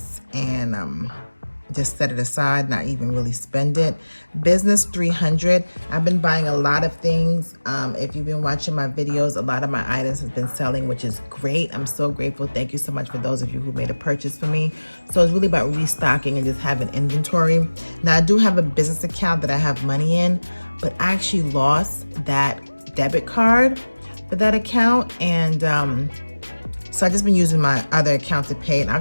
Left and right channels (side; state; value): both; inverted; correlation -1.00